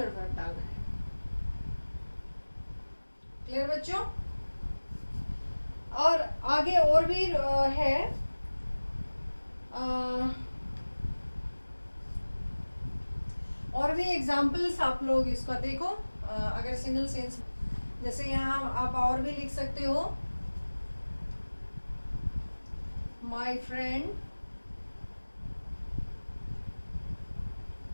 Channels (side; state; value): both; inverted; correlation -1.00